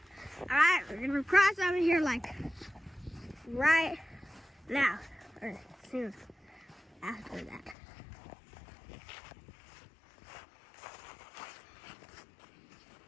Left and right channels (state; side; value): drops out; right; at 7.8 s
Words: Alright, we're gonna cross over here like right now, or soon after that.